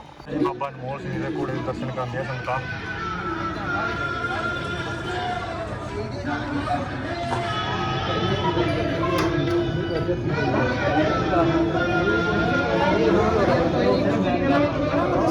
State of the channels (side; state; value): both; identical; correlation 1.00